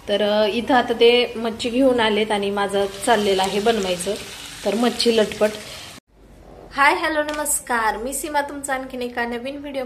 तर इथं आता ते मच्छी घेऊन आलेत आणि माझं चाललेलं आहे बनवायचं तर मच्छी लटपट. हाय हॅलो नमस्कार, मी सीमा तुमचं आणखीन एका नवीन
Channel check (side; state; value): both; identical; correlation 1.00